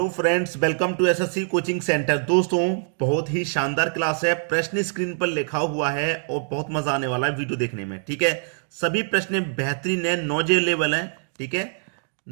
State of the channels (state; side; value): silent; left; digital silence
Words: friends, welcome to SSC coaching centre. दोस्तों, बहुत ही शानदार क्लास है। प्रश्न स्क्रीन पर लिखा हुआ है और बहुत मजा आने वाला है वीडियो देखने में। ठीक है, सभी प्रश्न बेहतरीन है, नॉलेज लेवल है। ठीक है,